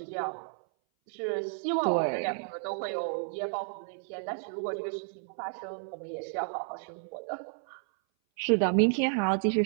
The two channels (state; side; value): silent; left; 57 dB below the other